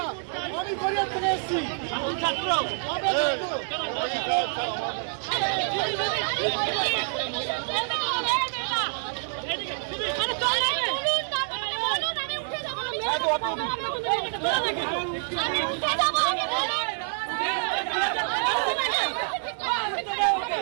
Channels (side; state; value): left; silent; digital silence